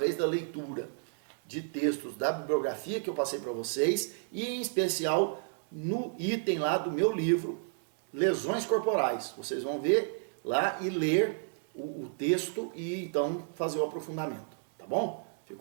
da leitura de textos da bibliografia que eu passei para vocês e, em especial, no item lá do meu livro, Lesões Corporais. Vocês vão ver lá e ler o texto e, então, fazer o aprofundamento. Tá bom?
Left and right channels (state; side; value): silent; left; 57 dB below the other